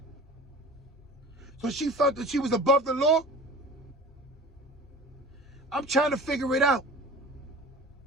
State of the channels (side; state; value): both; normal; correlation 0.39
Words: So she felt that she was above the law? I'm trying to figure it out.